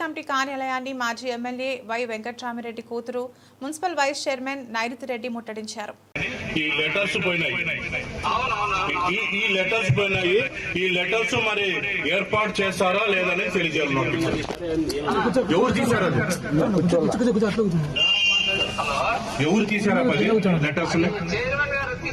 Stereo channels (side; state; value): both; identical; correlation 1.00